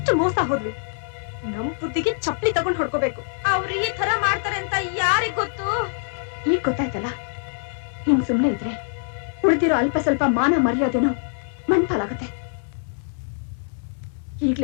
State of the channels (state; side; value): silent; right; 63 dB below the other